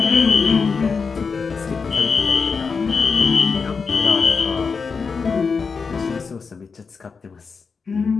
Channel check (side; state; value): right; quieter; 5.2 dB